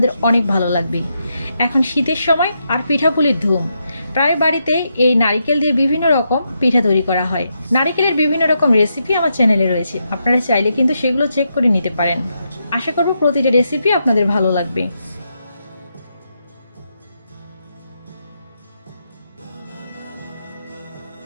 অনেক ভালো লাগবে। এখন শীতের সময় আর পিঠাপুলির ধুম, প্রায় বাড়িতেই এই নারিকেল দিয়ে বিভিন্ন রকম পিঠা তৈরি করা হয়। নারিকেলের বিভিন্ন রকম রেসিপি আমার চ্যানেলে রয়েছে, আপনারা চাইলে কিন্তু সেগুলো চেক করে নিতে পারেন। আশা করবো প্রতিটা রেসিপি আপনাদের ভালো লাগবে।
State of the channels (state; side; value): inverted; both; correlation -0.82